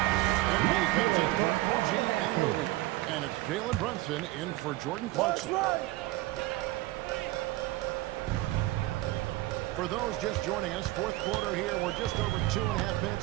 And he comes in for OG Anunoby. And it's Jalen Brunson in for Jordan Clarkson. For those just joining us, fourth quarter here, we're just over 2.5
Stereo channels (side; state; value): left; quieter; 18.1 dB